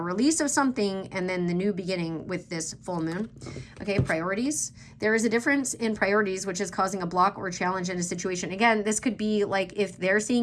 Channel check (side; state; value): both; identical; correlation 1.00